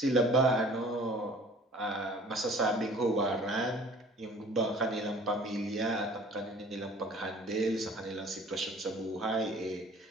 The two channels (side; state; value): both; normal; correlation 0.49